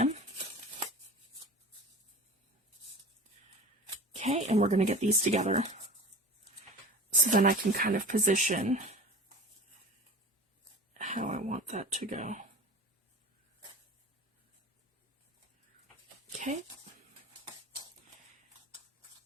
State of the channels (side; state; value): both; normal; correlation 0.36